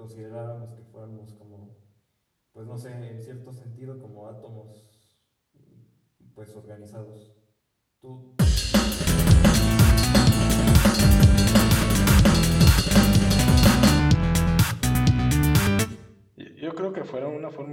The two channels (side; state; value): both; identical; correlation 1.00